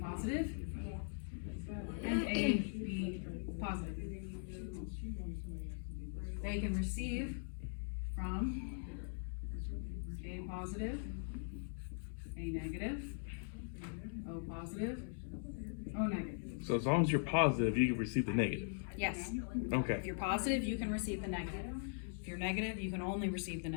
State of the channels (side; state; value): right; silent; digital silence